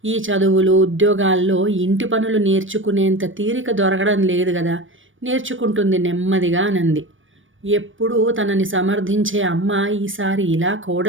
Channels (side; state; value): left; late; 0.57 ms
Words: ఈ చదువులు, ఉద్యోగాల్లో ఇంటి పనులు నేర్చుకునేంత తీరిక దొరకడం లేదు కదా. నేర్చుకుంటుంది నెమ్మదిగా అనంది. ఎప్పుడూ తనని సమర్థించే అమ్మ ఈసారి ఇలా